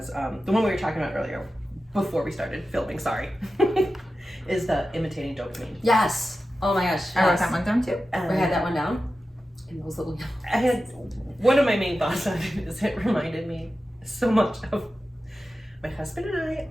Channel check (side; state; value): both; normal; correlation 0.93